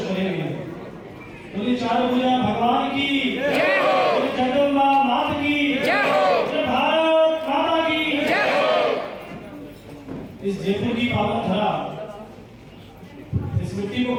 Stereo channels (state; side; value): identical; both; correlation 1.00